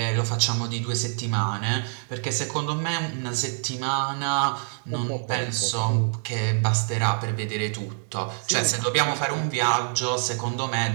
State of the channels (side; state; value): left; silent; digital silence